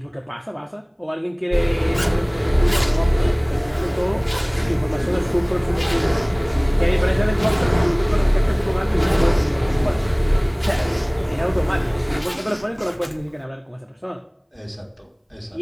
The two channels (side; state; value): both; identical; correlation 1.00